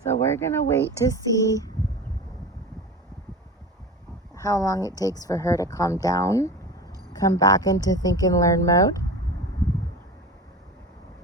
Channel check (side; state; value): both; normal; correlation 0.31